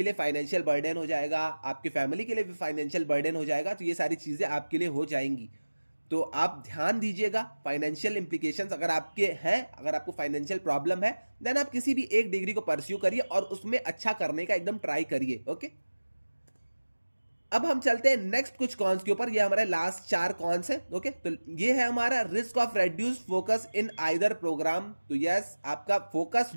लिए फाइनेंशियल बर्डन हो जाएगा, आपके फैमिली के लिए भी फाइनेंशियल बर्डन हो जाएगा। तो ये सारी चीजें आपके लिए हो जाएंगी। तो आप ध्यान दीजिएगा, फाइनेंशियल इंप्लीकेशंस अगर आपके हैं, अगर आपको फाइनेंशियल प्रॉब्लम है, देन आप किसी भी एक डिग्री को परस्यू करिए और उसमें अच्छा करने का एकदम ट्राई करिए। ओके, अब हम चलते हैं नेक्स्ट कुछ कॉन्स के ऊपर। ये हमारे लास्ट 4 कॉन्स है। ओके, तो ये है हमारा risk of reduce focus in either programme. तो यस, आपका फोकस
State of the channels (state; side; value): inverted; both; correlation -1.00